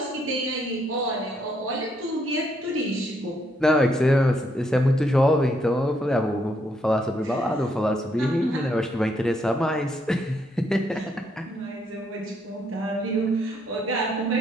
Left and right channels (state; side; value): normal; both; correlation 0.73